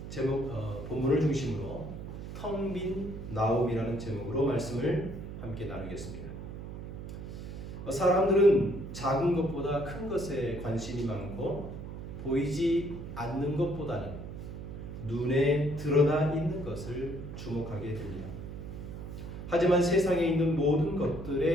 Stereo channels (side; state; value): right; noise; hum, 9 dB below the sound